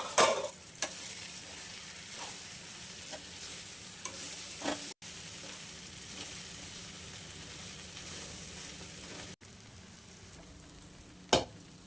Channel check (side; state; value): both; identical; correlation 1.00